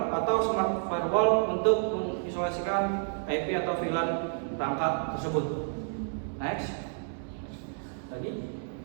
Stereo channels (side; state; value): left; silent; 58 dB below the other